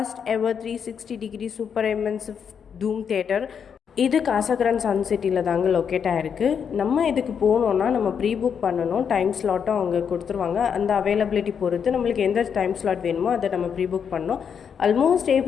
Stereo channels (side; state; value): right; quieter; 7.2 dB